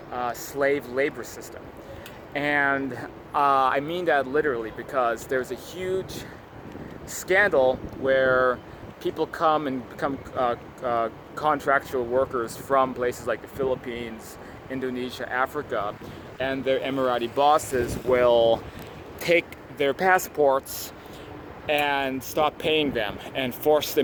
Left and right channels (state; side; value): identical; both; correlation 1.00